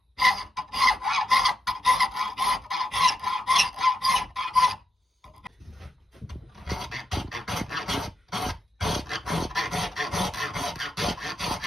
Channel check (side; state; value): both; normal; correlation 0.85